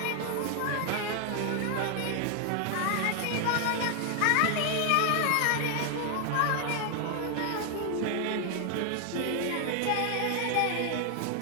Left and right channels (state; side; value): different; both; correlation 0.00